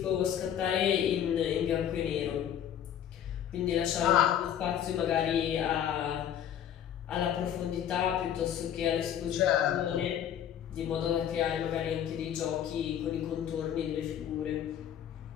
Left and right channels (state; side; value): quieter; right; 9.9 dB